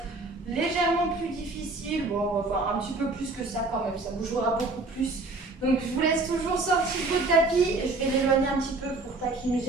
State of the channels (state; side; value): quieter; left; 3.3 dB